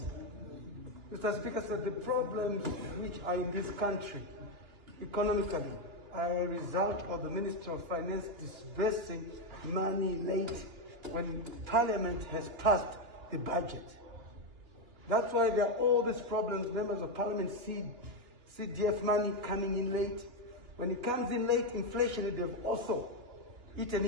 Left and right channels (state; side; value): late; left; 2.9 ms